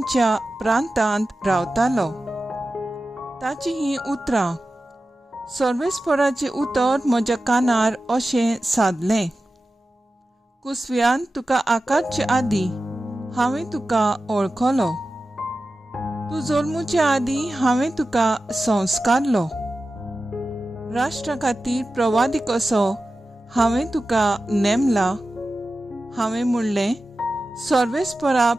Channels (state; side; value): normal; both; correlation 0.94